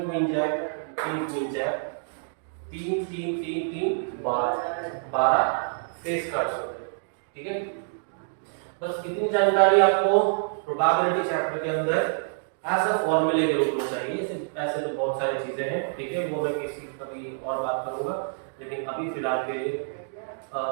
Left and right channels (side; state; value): left; silent; digital silence